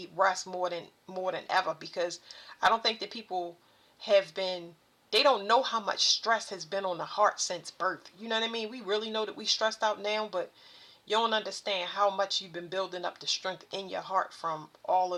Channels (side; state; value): both; identical; correlation 1.00